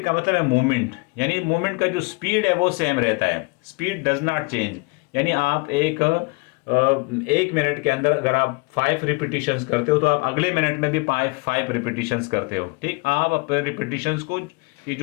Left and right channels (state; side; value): quieter; right; 29.3 dB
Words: का मतलब है मूवमेंट, यानी मूवमेंट का जो स्पीड है वो सेम रहता है, स्पीड डज नॉट चेंज। यानी आप एक मिनट के अंदर अगर आप 5 रिपीटिशंस करते हो तो आप अगले मिनट में भी 5 रिपीटिशंस करते हो, ठीक। आप अपने रिपीटिशंस को की